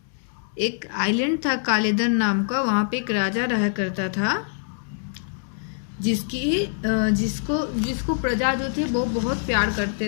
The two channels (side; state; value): right; silent; digital silence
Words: एक island था कालेदन नाम का। वहाँ पे एक राजा रहा करता था जिसको प्रजा जो थे वो बहुत प्यार